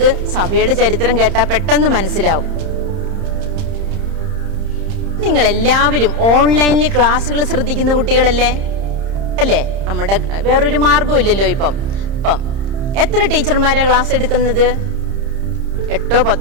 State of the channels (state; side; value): late; left; 30 ms